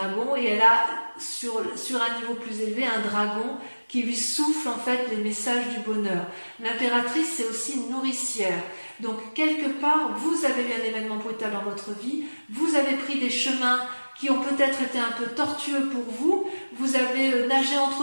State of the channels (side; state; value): both; inverted; correlation -1.00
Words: et elle a sur un niveau plus élevé un dragon qui lui souffle en fait les messages du bonheur. L'impératrice, c'est aussi une nourricière. Donc quelque part, vous avez eu un événement brutal dans votre vie, vous avez pris des chemins qui ont peut-être été un peu tortueux pour vous, vous avez nagé